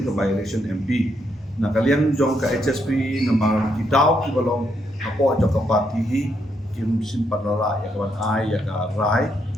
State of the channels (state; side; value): normal; both; correlation 0.77